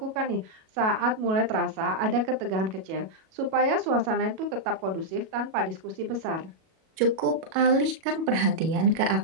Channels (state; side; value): late; left; 37 ms